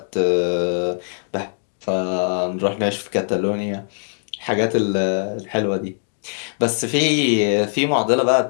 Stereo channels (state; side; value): silent; right; digital silence